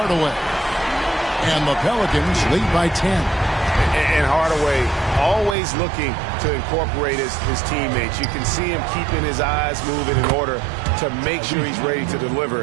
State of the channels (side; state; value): left; drops out; at 5.6 s